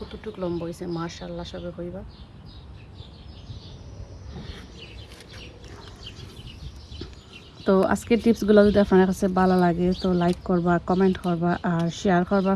লম্বা হয়েছে, মাশাআল্লাহ সবে কইবা। তো আজকের টিপসগুলো যদি আপনার কাছে ভালো লাগে তো লাইক করবা, কমেন্ট করবা আর শেয়ার করবা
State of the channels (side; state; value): both; identical; correlation 1.00